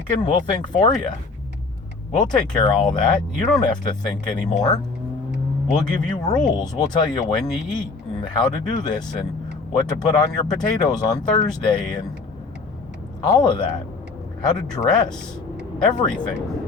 We'll think for you. We'll take care of all that. You don't have to think anymore. We'll give you rules. We'll tell you when you eat and how to do this and what to put on your potatoes on Thursday and all of that. How to dress.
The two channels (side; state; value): right; quieter; 4.0 dB